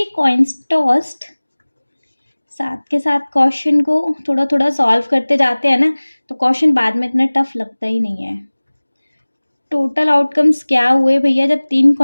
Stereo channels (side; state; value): both; inverted; correlation -1.00